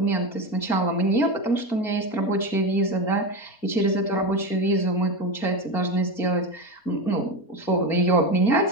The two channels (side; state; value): right; late; 4.3 ms